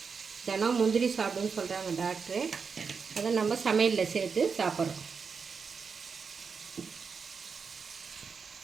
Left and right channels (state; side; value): quieter; left; 5.6 dB